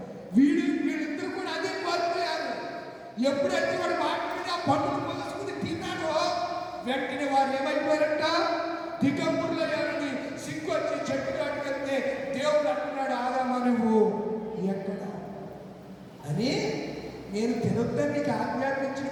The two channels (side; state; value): both; identical; correlation 1.00